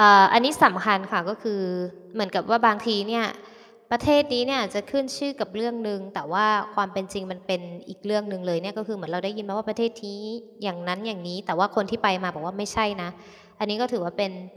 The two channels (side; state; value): both; identical; correlation 1.00